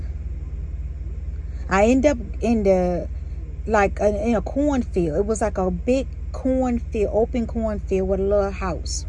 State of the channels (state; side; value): identical; both; correlation 1.00